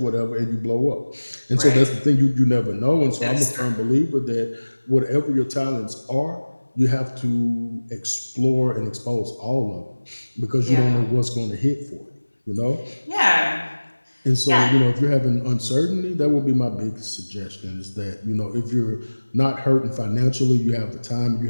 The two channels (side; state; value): both; inverted; correlation -1.00